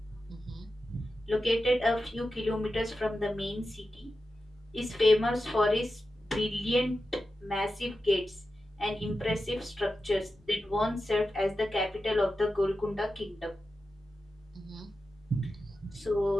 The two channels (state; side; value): normal; both; correlation 0.91